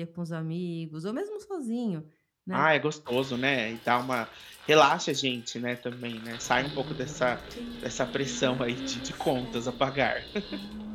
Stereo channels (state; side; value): identical; both; correlation 1.00